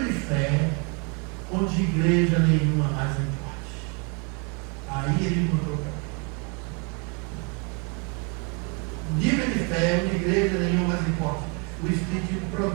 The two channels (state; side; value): quieter; left; 34.0 dB